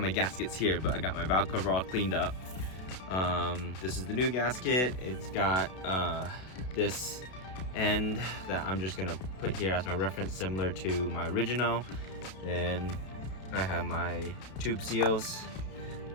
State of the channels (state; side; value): late; right; 32 ms